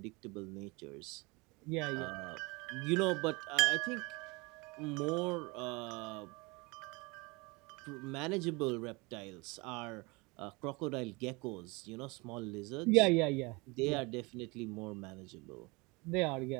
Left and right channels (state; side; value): quieter; left; 26.3 dB